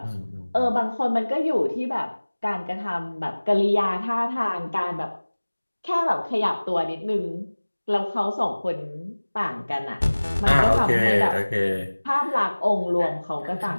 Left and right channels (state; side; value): inverted; both; correlation -1.00